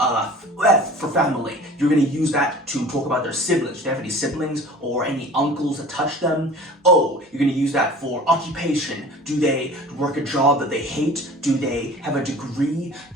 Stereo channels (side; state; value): both; normal; correlation 0.43